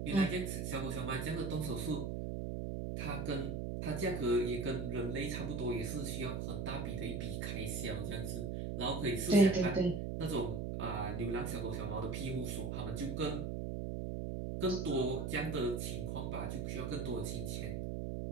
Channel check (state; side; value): noise; right; hum, 2 dB below the sound